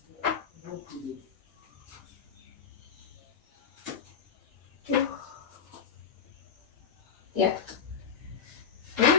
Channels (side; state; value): right; quieter; 7.0 dB